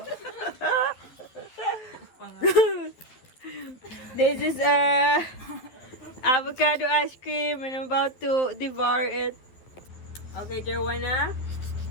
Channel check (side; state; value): right; late; 12 ms